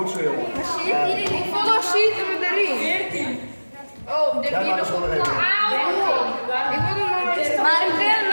zo jongen. Hoeveel zitten we erin? 14. Oh, dit Jij maakt het gewoon nog even. Ik wil er nog iets. Maar ik wil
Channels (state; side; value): inverted; both; correlation -1.00